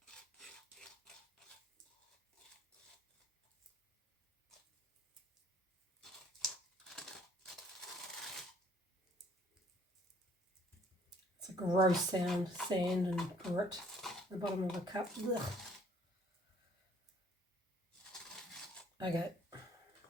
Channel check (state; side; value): normal; both; correlation 0.60